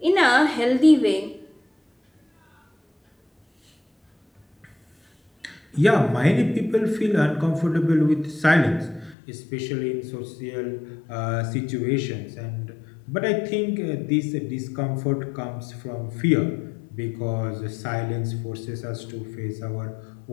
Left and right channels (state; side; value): drops out; right; at 9.2 s